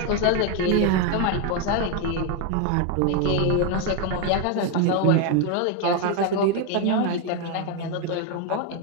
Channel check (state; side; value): different; both; correlation 0.01